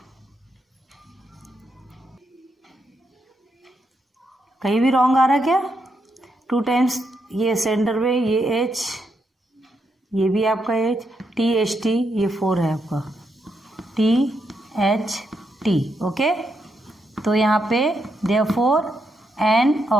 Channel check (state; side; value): normal; both; correlation 0.80